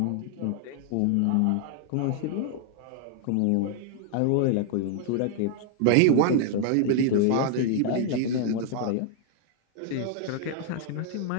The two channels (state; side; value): different; both; correlation 0.00